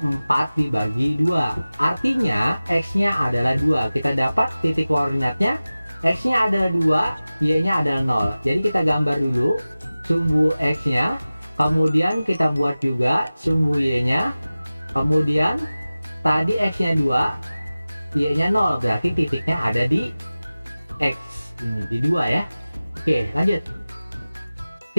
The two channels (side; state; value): both; inverted; correlation -0.97